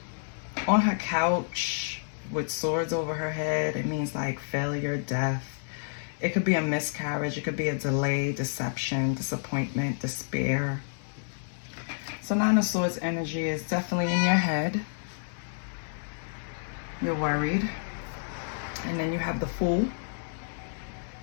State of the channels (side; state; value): right; silent; digital silence